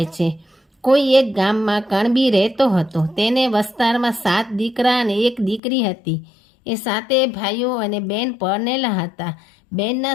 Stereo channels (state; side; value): drops out; right; at 5.6 s